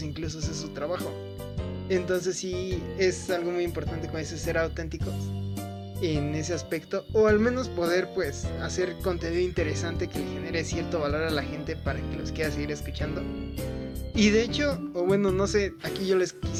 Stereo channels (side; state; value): both; identical; correlation 1.00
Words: incluso ese es su trabajo. Entonces sí es algo muy importante, como dices, ser auténticos en ese aspecto, o al menos poder pues hacer contenido interesante que le genere cierto valor a la gente para que los quiera seguir escuchando. Y de hecho, o bueno, no sé, aquí yo les